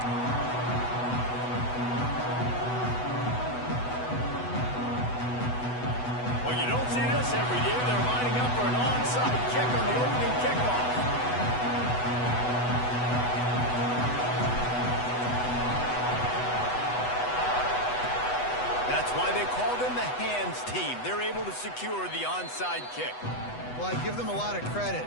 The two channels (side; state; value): right; late; 8.1 ms